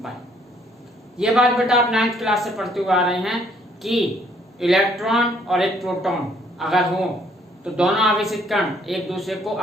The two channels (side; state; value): both; normal; correlation 0.64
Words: ये बात बेटा आप 9th क्लास से पढ़ते हुए आ रहे हैं कि इलेक्ट्रॉन और एक प्रोटॉन अगर हो तो दोनों आवेशित कण एक दूसरे को